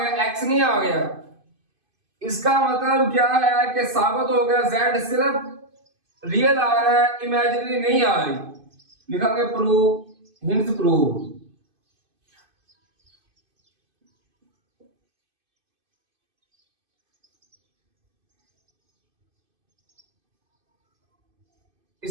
x नहीं आ गया। इसका मतलब क्या है कि साबित हो गया z सिर्फ रियल आ रहा है, इमेजिनरी नहीं आ रही, लिखेंगे प्रूव, हिंट्स प्रूव।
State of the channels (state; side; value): late; left; 2.5 ms